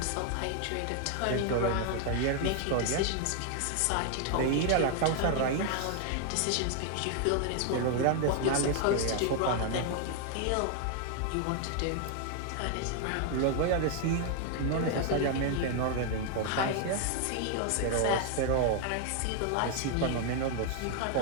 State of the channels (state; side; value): different; both; correlation 0.00